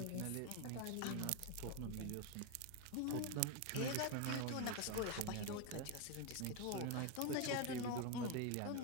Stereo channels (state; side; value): different; both; correlation 0.02